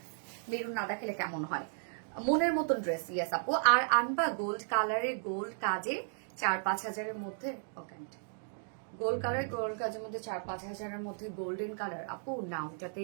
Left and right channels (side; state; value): left; silent; digital silence